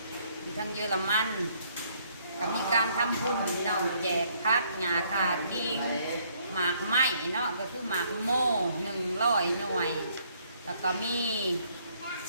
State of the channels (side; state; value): both; inverted; correlation -0.67